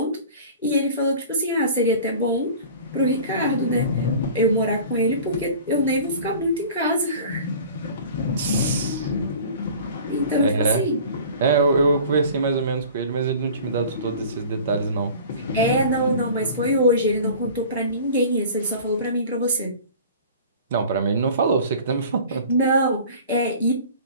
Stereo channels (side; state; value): both; inverted; correlation -0.42